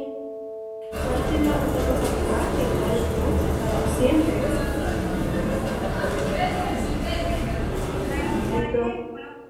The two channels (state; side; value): identical; both; correlation 1.00